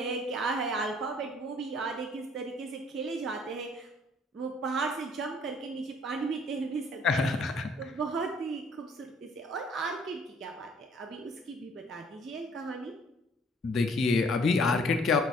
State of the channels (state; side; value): normal; both; correlation 0.59